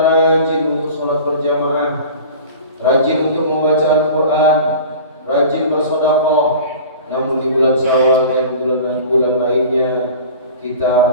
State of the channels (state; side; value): inverted; both; correlation -0.40